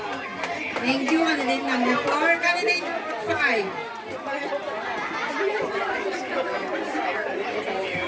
Thank you, candidate number 4. Candidate 5.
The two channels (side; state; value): both; identical; correlation 1.00